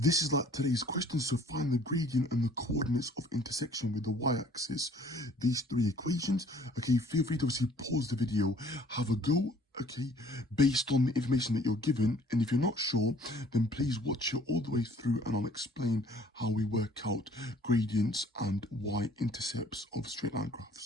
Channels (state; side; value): normal; both; correlation 0.55